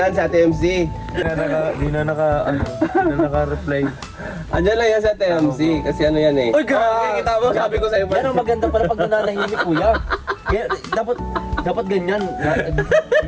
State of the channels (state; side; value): identical; both; correlation 1.00